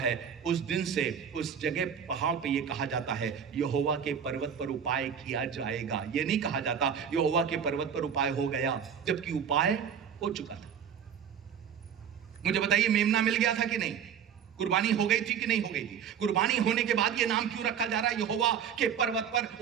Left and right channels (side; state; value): left; quieter; 7.9 dB